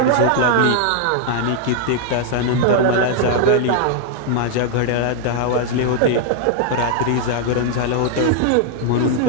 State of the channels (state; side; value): different; both; correlation 0.00